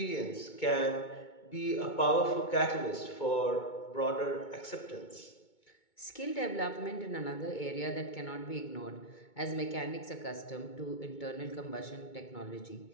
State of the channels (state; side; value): late; right; 2.2 ms